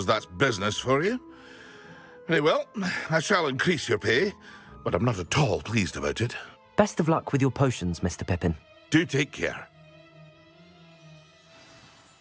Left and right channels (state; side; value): identical; both; correlation 1.00